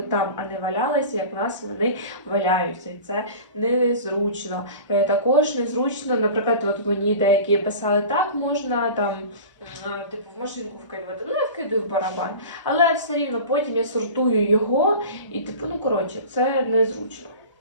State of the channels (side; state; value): both; inverted; correlation -0.37